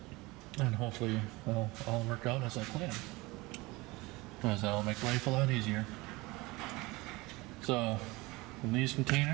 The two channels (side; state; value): left; quieter; 22.5 dB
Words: And hopefully it'll all work out as I plan, because that'll make life a lot easier. So in these